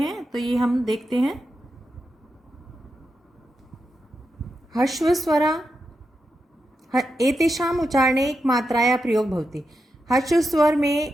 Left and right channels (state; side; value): normal; both; correlation 0.87